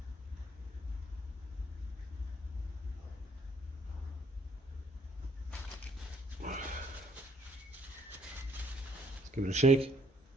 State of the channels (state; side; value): normal; both; correlation 0.64